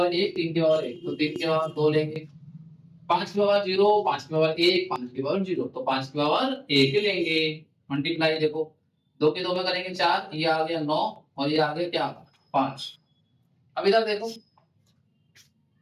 1, 3 की पावर 1, तो 3 की पावर 2 लेंगे। 5 की पावर 0, 5 की पावर 1, 5 की पावर 0, तो 5 की पावर 1 लेंगे। मल्टीप्लाई देखो, 2 के 2 में करेंगे 4, ये आ गया 9 और ये आ गया क्या? 5। अब इधर देखो,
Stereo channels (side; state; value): both; identical; correlation 1.00